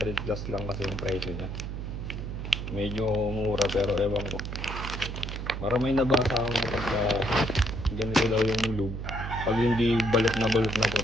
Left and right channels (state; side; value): noise; right; hum, 5 dB below the sound